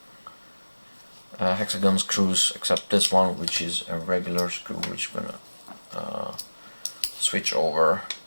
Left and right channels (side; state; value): both; inverted; correlation -1.00